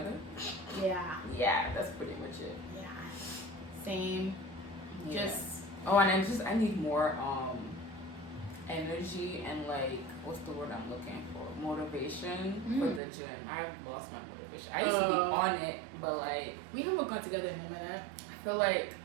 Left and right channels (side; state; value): left; drops out; at 13.0 s